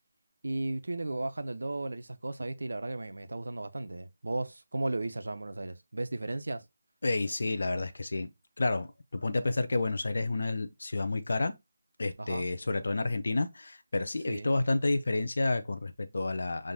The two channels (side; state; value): both; inverted; correlation -0.96